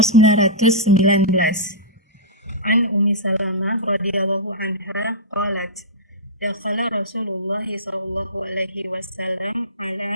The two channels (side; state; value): both; normal; correlation -0.16